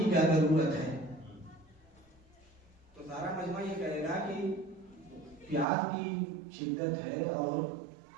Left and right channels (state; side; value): drops out; left; at 5.7 s